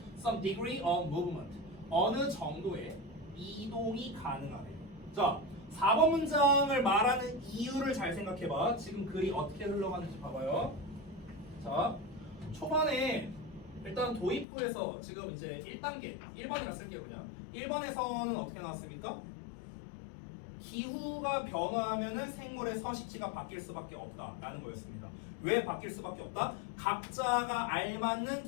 Some degree of movement. 어느 정도의 이동이 가능하대요. 자, 4번 문장을 말하는 이유를 잘 생각해봐. 지금 글이 어떻게 흘러가는지 봐봐요. 자, 초반에 일단 도입부에서 지금 이제 1단계, 1번이라 쓸게요 그냥. 1번에서는 어떻게 나왔습니까? 기후가 변화하면은 생물의 서식지가 바뀔 수밖에 없다라는 거였습니다. 왜 바뀔 수밖에 없다? 각자가 알맞는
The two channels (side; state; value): right; drops out; at 14.5 s